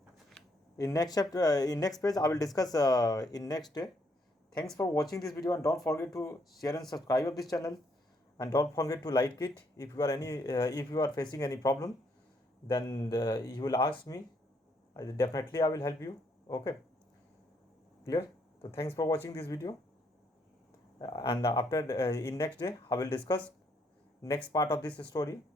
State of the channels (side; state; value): both; normal; correlation 0.72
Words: in next chapter, in next page, I will discuss in next day. Thanks for watching this video, and don't forget to share and subscribe of this channel, and don't forget to like it. If you are facing any problem, then you will ask me. Definitely I will help you. Okay, clear? So thanks for watching this video, and after in next day I will discuss next part of this story.